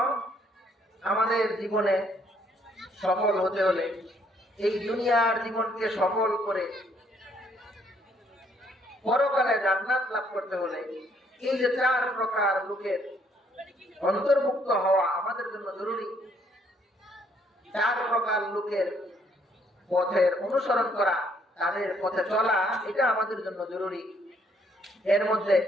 আমাদের জীবনে সফল হতে হলে, এই দুনিয়ার জীবনকে সফল করে পরকালে জান্নাত লাভ করতে হলে, এই যে 4 প্রকার লোকের অন্তর্ভুক্ত হওয়া আমাদের জন্য জরুরি। 4 প্রকার লোকের পথের অনুসরণ করা, তাদের পথে চলা, এটা আমাদের জন্য জরুরি। এর মধ্যে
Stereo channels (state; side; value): normal; both; correlation 0.67